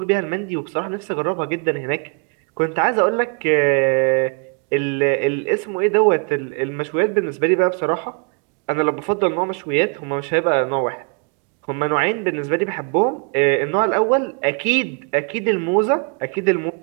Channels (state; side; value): quieter; left; 37.0 dB